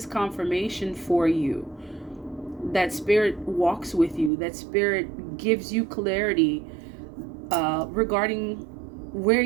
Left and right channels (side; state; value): left; drops out; at 4.3 s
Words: confirmation for you that Spirit walks with you, that Spirit gives you clarity regarding where